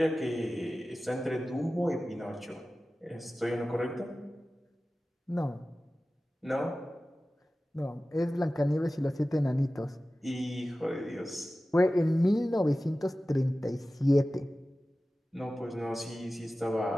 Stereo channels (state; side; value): normal; both; correlation 0.96